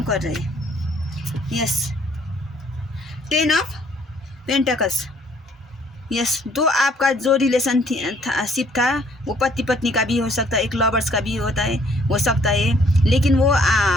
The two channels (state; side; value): normal; both; correlation 0.62